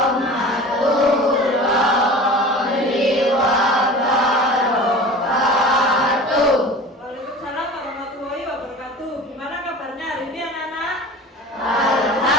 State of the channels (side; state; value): both; normal; correlation 0.38